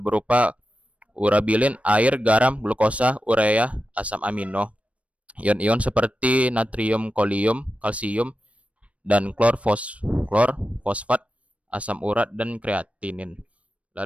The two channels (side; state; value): left; late; 0.064 ms